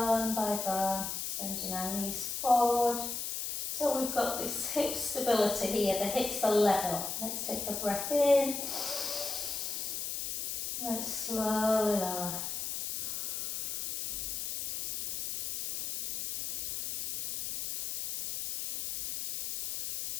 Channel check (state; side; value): noise; left; hiss, 3 dB below the sound